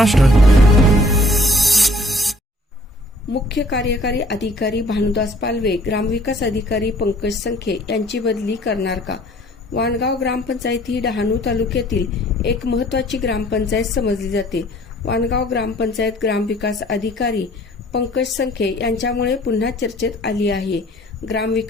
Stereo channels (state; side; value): normal; both; correlation 0.56